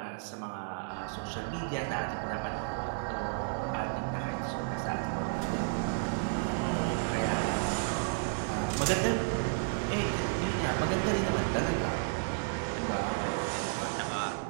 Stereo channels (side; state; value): left; silent; digital silence